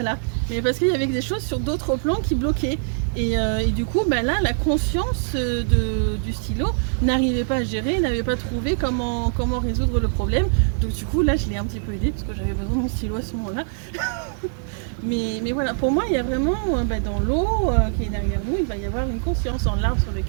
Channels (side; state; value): left; silent; 63 dB below the other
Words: mais parce qu'il y avait des choses sur d'autres plans qui bloquaient. Et du coup, là, la conscience du stylo n'arrivait pas à gérer, n'avait pas trouvé comment résoudre le problème. Donc du coup, là, je l'ai un petit peu aidé parce que j'avais besoin de mon stylo à ce moment-là. mais voilà, pour moi, il y a vraiment, dans l'eau qui est derrière nous, il va y avoir une conscience. Dans l'arbre sur